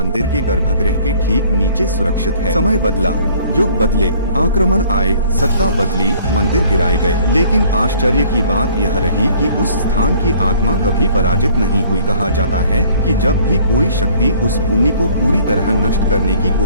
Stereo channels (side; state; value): both; inverted; correlation -0.56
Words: के गर्भगृह के ठीक नीचे सुरक्षित है। समय बदला, युग बदले, आक्रमण आए, सत्ता बदली, मंदिर गिराए गए, लेकिन आश्चर्य की बात यह रही कि उस स्थान की आत्मा कभी पराजित नहीं हुई। कहा जाता है कि जब भी कोई शक्ति उस भूमि को पूरी तरह नष्ट करने की